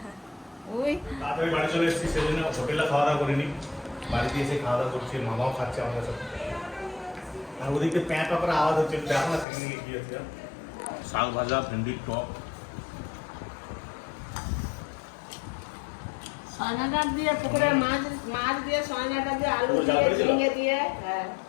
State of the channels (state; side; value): drops out; right; at 9.5 s